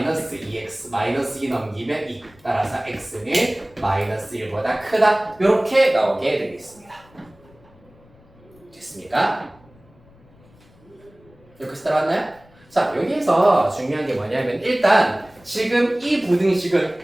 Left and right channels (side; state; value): left; noise; rumble, 28 dB below the sound